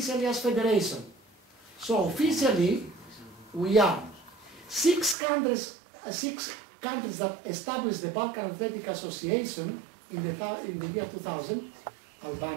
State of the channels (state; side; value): drops out; left; at 5.2 s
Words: as federation. So officially, we are 6 countries that established the Balkan Athletic Association in the year 2000,